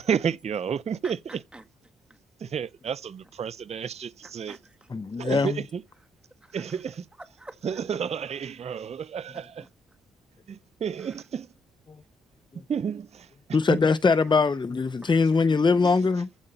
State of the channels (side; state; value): both; normal; correlation 0.75